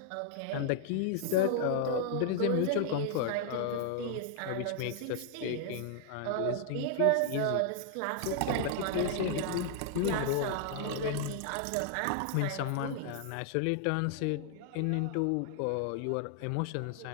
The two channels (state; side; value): different; both; correlation 0.00